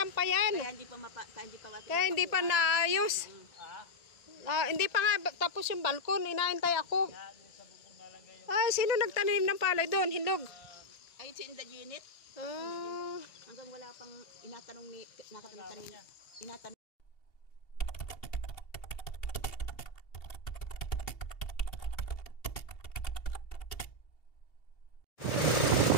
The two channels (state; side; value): late; right; 2.7 ms